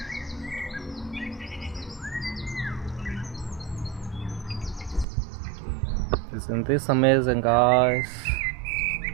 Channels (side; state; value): left; drops out; at 5.1 s